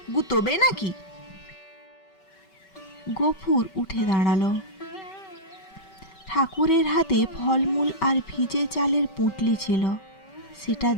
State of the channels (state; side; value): late; right; 5.2 ms